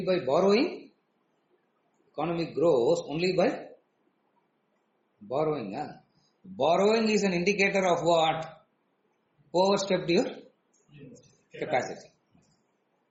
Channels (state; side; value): identical; both; correlation 1.00